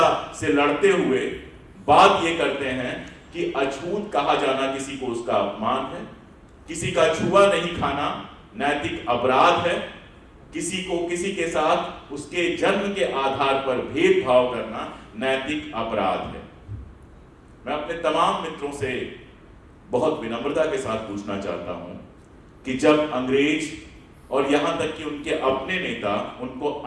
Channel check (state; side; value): identical; both; correlation 1.00